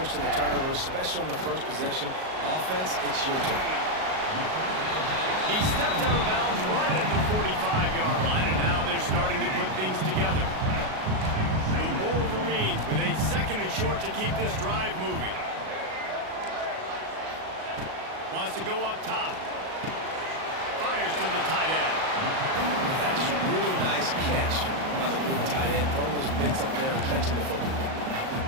a turnover, especially on the first possession. Offense, it's your turn. He stepped out of bounds right at the 45-yard line, and now they're starting to put things together. The Wolverines with a 2nd and short to keep this drive moving. Wants to go up top. Fires to the tight end. That's a really nice catch by the big tight end, throwing those mitts up there and catching the football.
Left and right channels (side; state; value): left; late; 38 ms